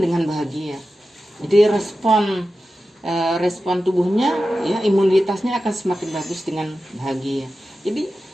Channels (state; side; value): normal; both; correlation 0.93